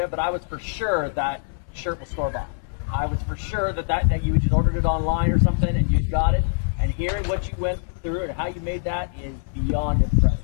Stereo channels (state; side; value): silent; right; 63 dB below the other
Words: it, but I was for sure that shirt was store-bought. I was for sure that you just ordered it online or something and you got it. And hearing what you went through and how you made that is beyond